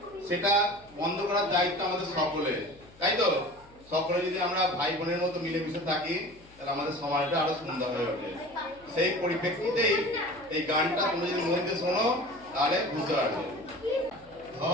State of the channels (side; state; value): left; noise; hum, 26 dB below the sound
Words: সেটা বন্ধ করার দায়িত্ব আমাদের সকলের, তাই তো? সকলে যদি আমরা ভাই বোনের মতো মিলেমিশে থাকি তাহলে আমাদের সমাজটা আরো সুন্দর হয়ে ওঠে। সেই পরিপ্রেক্ষিতেই এই গানটা তোমরা যদি মন দিয়ে শোনো তাহলে বুঝতে পারবে।